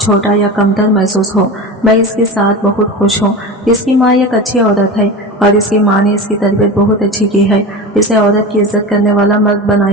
छोटा या कमतर महसूस हो। मैं इसके साथ बहुत खुश हूँ। इसकी माँ एक अच्छी औरत है और इसकी माँ ने इसकी तरबियत बहुत अच्छी की है, इसे औरत की इज्जत करने वाला मर्द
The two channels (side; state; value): both; normal; correlation 0.28